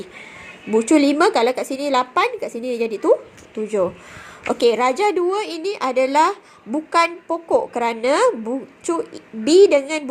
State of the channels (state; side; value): identical; both; correlation 1.00